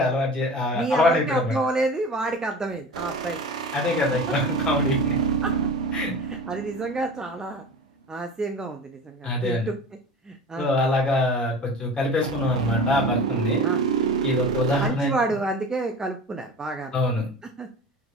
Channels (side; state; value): both; normal; correlation 0.35